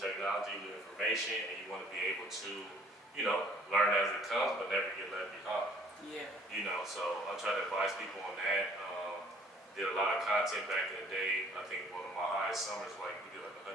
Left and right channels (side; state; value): both; normal; correlation 0.57